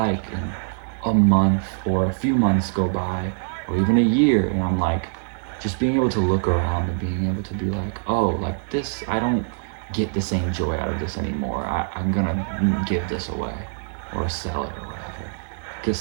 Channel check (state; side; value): silent; left; digital silence